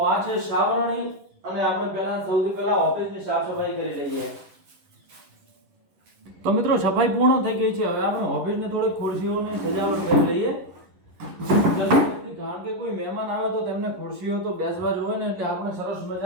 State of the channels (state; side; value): late; left; 11 ms